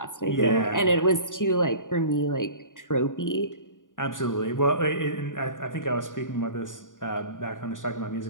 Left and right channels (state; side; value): late; right; 0.88 ms